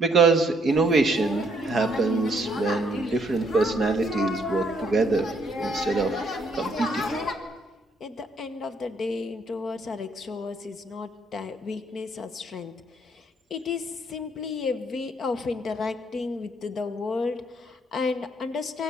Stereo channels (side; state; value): both; normal; correlation 0.69